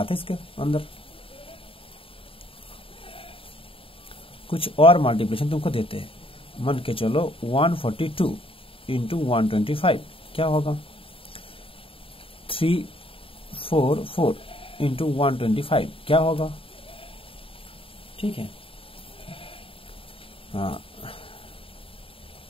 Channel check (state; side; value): late; right; 0.26 ms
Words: इसके अंदर, कुछ और मल्टीप्लिकेशन तुमको देते हैं। मान के चलो 142 इंटू 125 क्या होगा? 344 इंटू 125 क्या होगा? ठीक है, हाँ